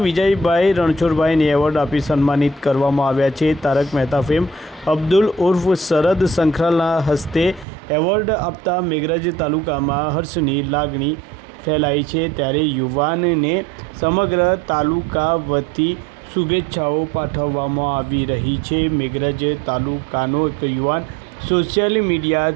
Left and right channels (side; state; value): left; drops out; at 7.7 s